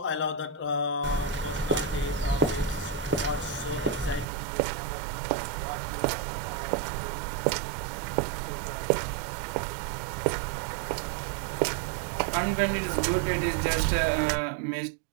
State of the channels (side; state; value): left; drops out; at 4.2 s